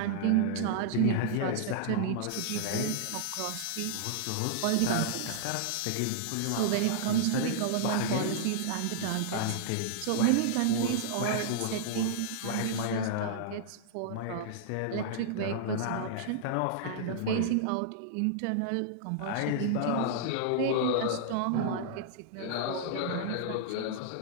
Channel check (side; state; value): both; different; correlation -0.01